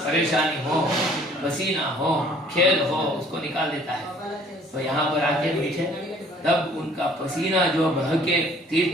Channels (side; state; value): both; normal; correlation 0.56